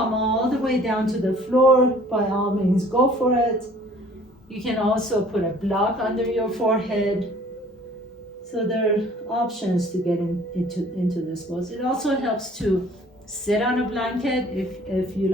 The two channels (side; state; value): both; normal; correlation 0.53